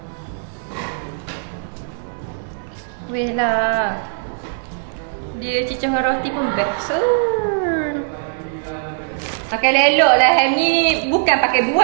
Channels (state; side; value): silent; left; digital silence